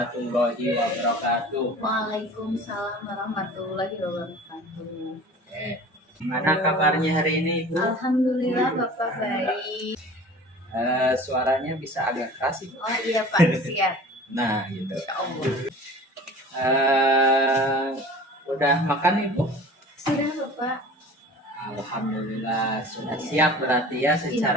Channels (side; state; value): both; normal; correlation 0.42